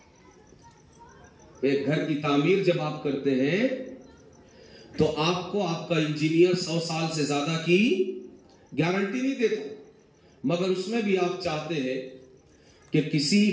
ایک گھر کی تعمیر جب آپ کرتے ہیں تو آپ کو آپ کا انجینئر 100 سال سے زیادہ کی گارنٹی نہیں دیتا, مگر اس میں بھی آپ چاہتے ہیں کہ کسی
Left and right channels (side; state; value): both; identical; correlation 1.00